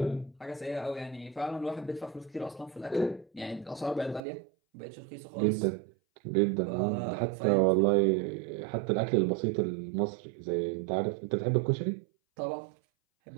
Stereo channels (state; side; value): drops out; left; at 4.2 s